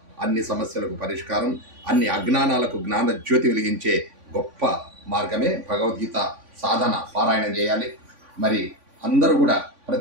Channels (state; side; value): late; left; 3.5 ms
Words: అన్ని సమస్యలకు పరిష్కారం, అన్ని అజ్ఞానాలకు జ్ఞాన జ్యోతి వెలిగించే గొప్ప మార్గమే భగవద్గీత సాధన. పారాయణం చేయాలి. మరి అందరూ కూడా